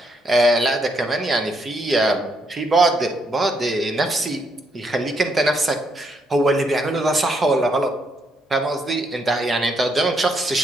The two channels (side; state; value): both; normal; correlation 0.76